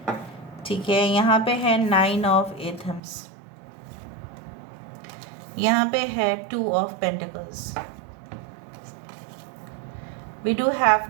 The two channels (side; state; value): left; drops out; at 3.0 s